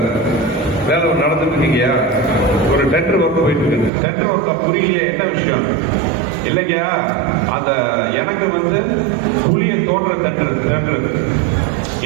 வேலை நடந்துட்டு இருக்கீங்கயா, ஒரு டெண்டர் ஒர்க் போயிட்டு இருக்கு. டெண்டர் ஒர்க் புரியலையே, என்ன விஷயம்? இல்லைங்கயா, அந்த எனக்கு வந்து குழியை தோன்ற டெண்டர்,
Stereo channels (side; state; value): left; drops out; at 3.9 s